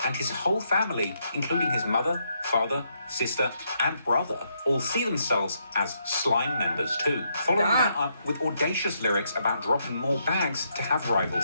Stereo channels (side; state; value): both; inverted; correlation -0.77